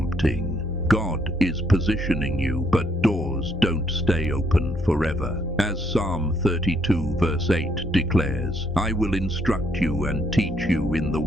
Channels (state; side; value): normal; both; correlation 0.71